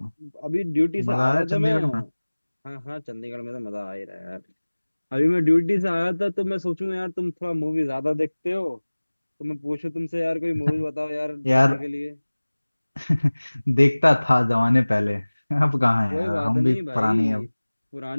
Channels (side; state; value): both; inverted; correlation -1.00